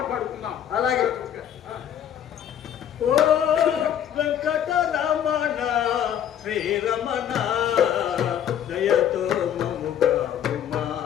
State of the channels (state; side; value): quieter; right; 9.8 dB